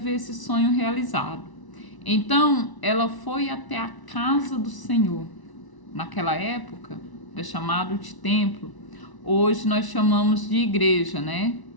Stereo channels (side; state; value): right; late; 1.0 ms